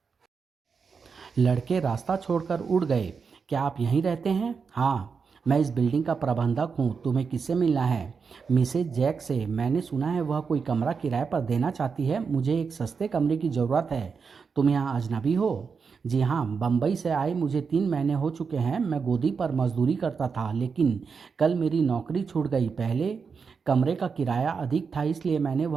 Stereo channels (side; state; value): left; quieter; 5.6 dB